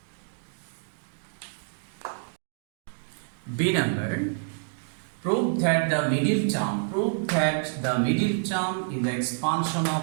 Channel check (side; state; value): left; silent; 59 dB below the other